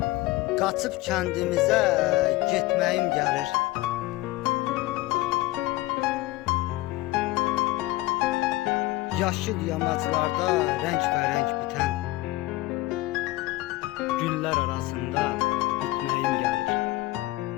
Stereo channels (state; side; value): quieter; right; 18.9 dB